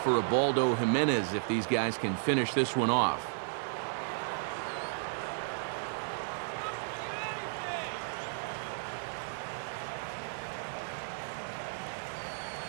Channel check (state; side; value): silent; left; digital silence